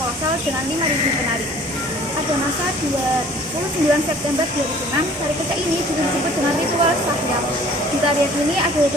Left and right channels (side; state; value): both; normal; correlation 0.51